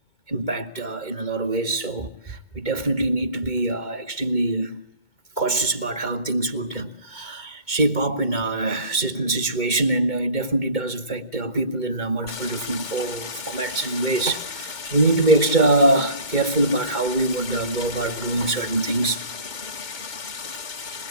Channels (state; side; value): late; right; 2.2 ms